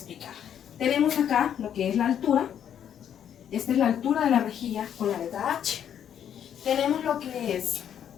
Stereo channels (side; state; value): right; quieter; 9.3 dB